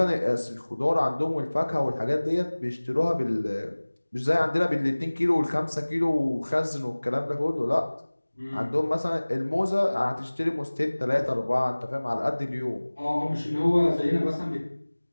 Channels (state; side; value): inverted; both; correlation -1.00